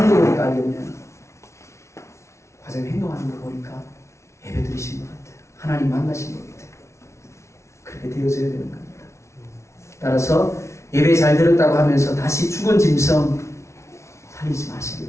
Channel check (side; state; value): right; late; 0.13 ms